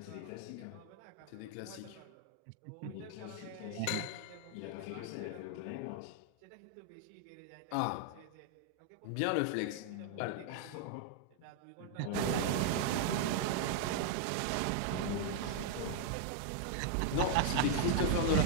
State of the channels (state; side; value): different; both; correlation 0.00